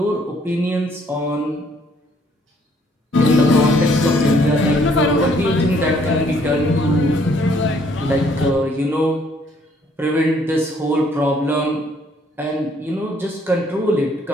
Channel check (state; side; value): normal; both; correlation 0.65